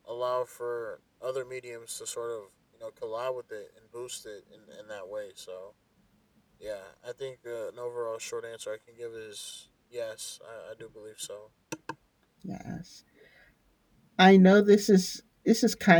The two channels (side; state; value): both; identical; correlation 1.00